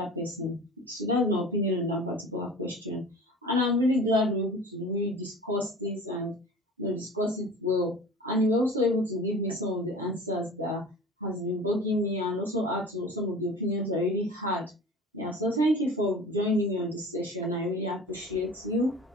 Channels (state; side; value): normal; both; correlation 0.39